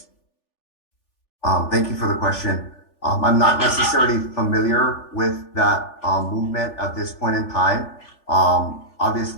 Thank you for the question. I'm not necessarily familiar with that movement at this point in time.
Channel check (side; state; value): right; late; 3.4 ms